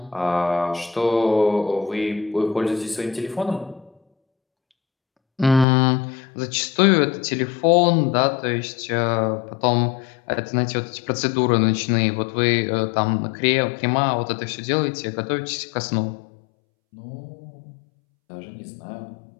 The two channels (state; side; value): drops out; right; at 5.7 s